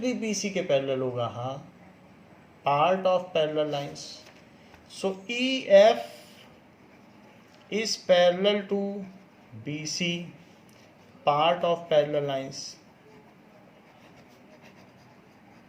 भी BC के पैरेलल होगा? हाँ, part of parallel lines. EF is parallel to BC, part of parallel lines।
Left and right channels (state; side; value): identical; both; correlation 1.00